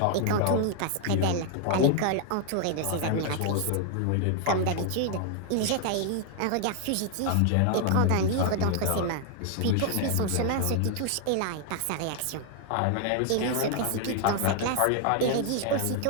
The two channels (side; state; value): both; different; correlation 0.00